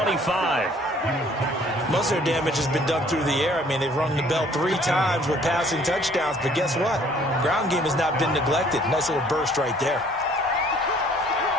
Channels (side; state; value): both; normal; correlation 0.58